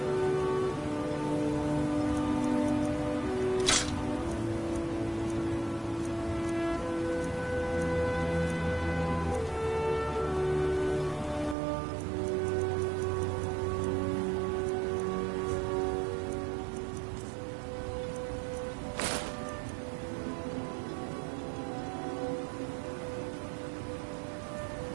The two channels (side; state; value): left; drops out; at 11.6 s